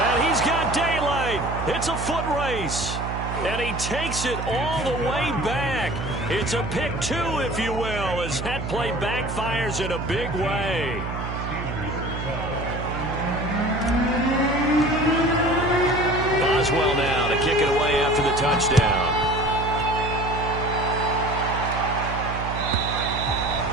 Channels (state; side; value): noise; right; hum, 5 dB below the sound